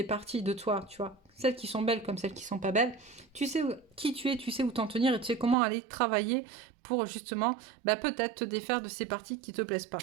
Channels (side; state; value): left; drops out; at 5.6 s